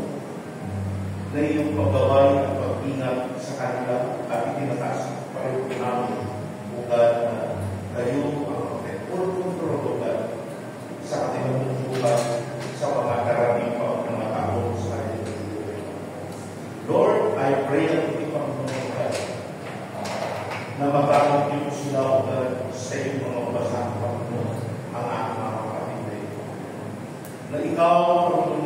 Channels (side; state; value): both; identical; correlation 1.00